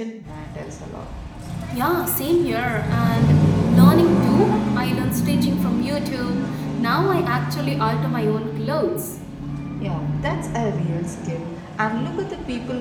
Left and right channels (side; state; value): both; identical; correlation 1.00